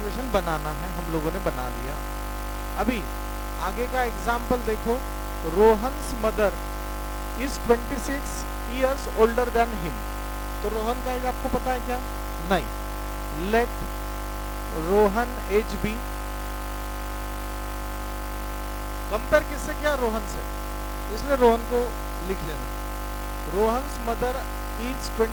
बनाना है, हम लोगों ने बना लिया। अभी आगे का एग्जाम्पल देखो, Rohan's mother is 26 years older than him। तो रोहन का एज आपको पता है क्या, नहीं। Let Rohan age be, compare किससे किया, रोहन से, इसलिए रोहन को लिख लेना। Rohan's mother is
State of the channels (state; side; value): identical; both; correlation 1.00